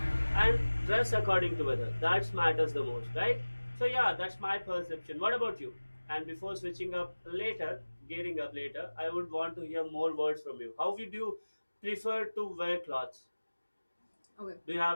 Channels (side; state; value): both; inverted; correlation -1.00